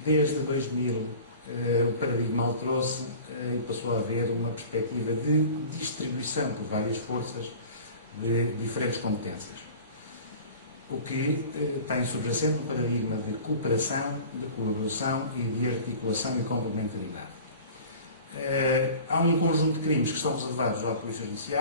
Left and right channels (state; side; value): inverted; both; correlation -0.42